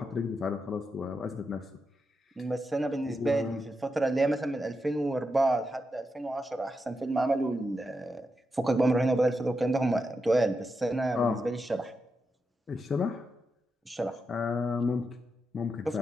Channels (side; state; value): both; normal; correlation 0.86